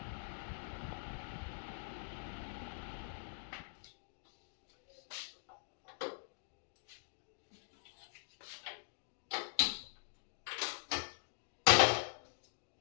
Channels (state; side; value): silent; right; digital silence